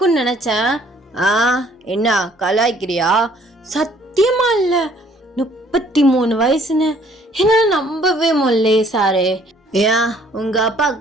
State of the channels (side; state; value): both; normal; correlation 0.60